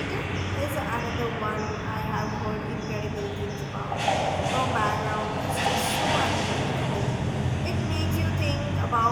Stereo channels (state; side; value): identical; both; correlation 1.00